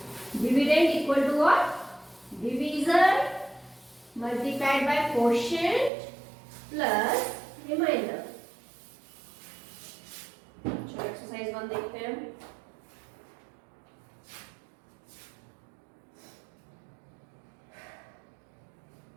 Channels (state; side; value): drops out; left; at 5.9 s